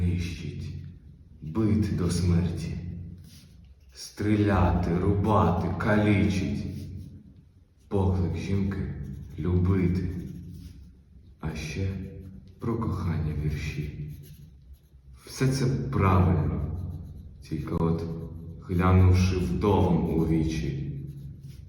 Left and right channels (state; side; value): identical; both; correlation 1.00